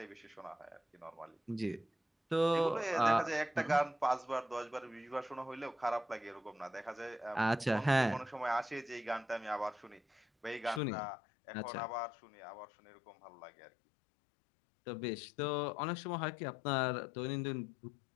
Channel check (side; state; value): right; drops out; at 10.8 s